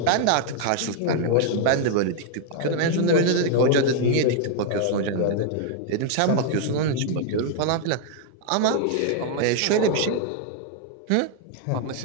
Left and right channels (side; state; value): both; different; correlation 0.00